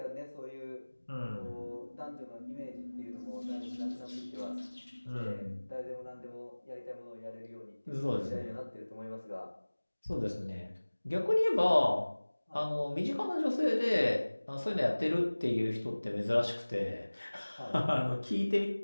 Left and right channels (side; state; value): both; inverted; correlation -1.00